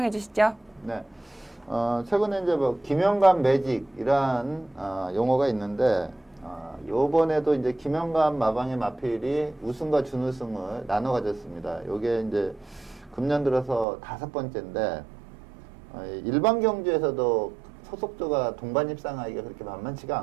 주시죠. 네. 최근에 이제 뭐 김영감 매직이란 용어가 있는데, 요번에도 이제 김영감 마방의 마필이 우승과 준우승을 나눠 가졌습니다. 요게 이제 금년 들어서 5번째인데, 일반 경주에서도 소속조가 동반 입상하기가 그렇게 만만치가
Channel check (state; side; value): drops out; left; at 13.9 s